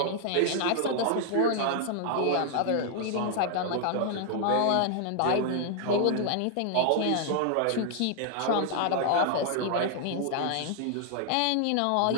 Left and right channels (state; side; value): different; both; correlation 0.00